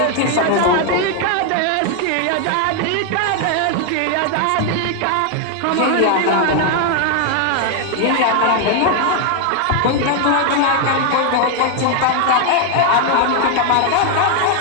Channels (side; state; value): both; different; correlation 0.00